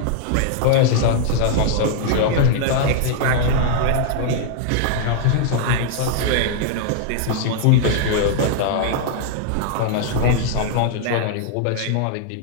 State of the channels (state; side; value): different; both; correlation -0.01